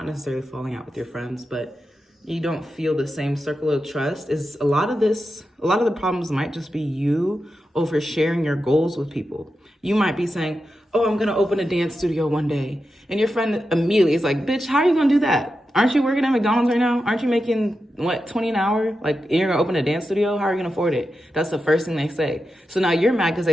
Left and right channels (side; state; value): both; normal; correlation 0.89